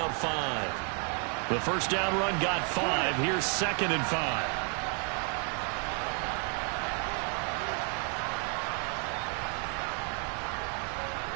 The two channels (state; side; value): quieter; left; 39.7 dB